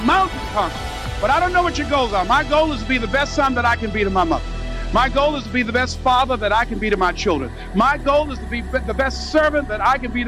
mountain conqueror. But I don't know what your goals are. My goal is to be the best son that I can be to my mother. My goal is to be the best father that I can be to my children. My goal is to be the best servant that I can be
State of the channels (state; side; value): identical; both; correlation 1.00